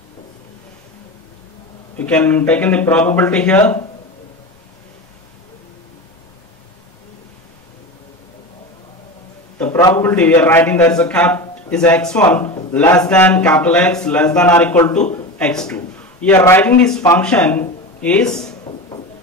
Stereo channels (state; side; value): normal; both; correlation 0.26